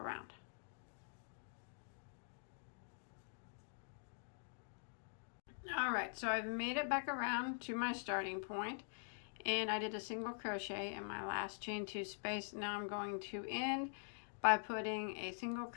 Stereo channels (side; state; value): right; silent; digital silence